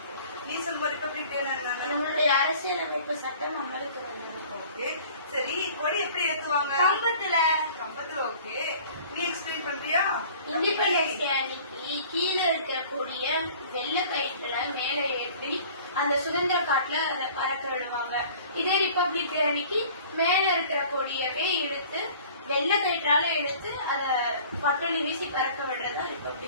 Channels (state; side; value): inverted; both; correlation -0.48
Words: நீ சொல்லுவ ரிபப்ளிக் டேனா என்ன? நம்மளுடைய அரசியலமைப்பு சட்டம் அமலுக்கு வந்தது. ஓகே, சரி. கொடி எப்படி ஏத்துவாங்க? கம்பத்துல. கம்பத்துல. ஓகே, நீ எக்ஸ்பிளைன் பண்றியா? இண்டிபெண்டன்ஸ் டே அன்னைக்கு கீழே இருக்கக்கூடிய வெள்ளை கயிற்றுல மேல ஏற்றி அந்த சுதந்திர காட்டுல பறக்க விடுவாங்க. இதே ரிபப்ளிக் டே அன்னைக்கு மேல இருக்கிற கொடியவே இழுத்து வெள்ளை கயிற்றால இழுத்து அத பட்டொலி வீசி பறக்க விடுறதா